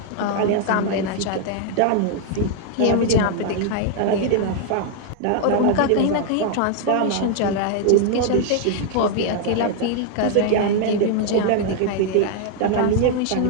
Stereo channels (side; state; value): both; different; correlation 0.00